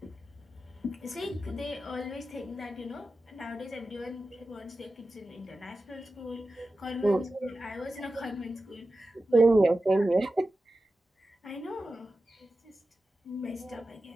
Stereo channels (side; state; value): both; normal; correlation 0.93